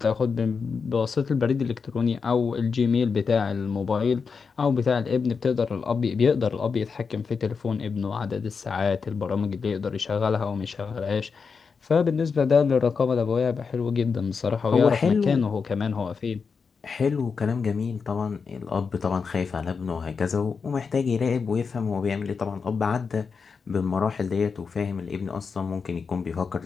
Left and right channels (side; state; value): right; quieter; 5.4 dB